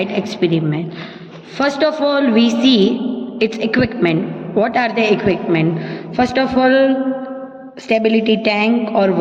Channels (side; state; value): both; identical; correlation 1.00